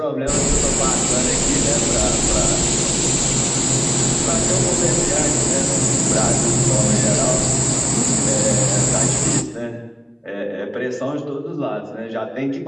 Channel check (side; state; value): both; identical; correlation 1.00